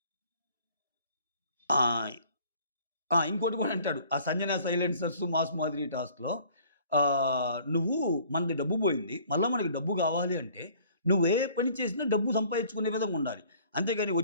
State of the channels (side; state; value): both; inverted; correlation -0.54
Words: ఆ! ఇంకోటి కూడా అంటాడు. ఆ 'సంజన సైలెన్సర్స్', 'మాస్ మాదిరి' టాస్క్‌లో "నువ్వు మనది డబ్బు పోయింది. మళ్ళా మనకి డబ్బు కావాలి అంటే నువ్వు ఏ పని చేసినా డబ్బు సంపాదించుకునే విధంగా ఉండాలి. అంతేగాని